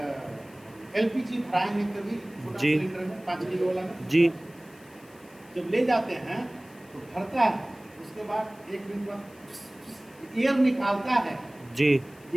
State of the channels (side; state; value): left; noise; hiss, 27 dB below the sound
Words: LPG भराएंगे कभी छोटा जी। सिलेंडर में 5 किलो वाला में जी। जब ले जाते हैं तो भरता है, उसके बाद 1 मिनट बाद एयर निकालता है जी।